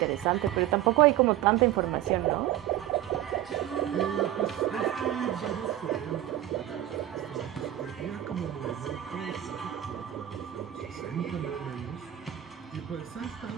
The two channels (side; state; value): left; quieter; 13.0 dB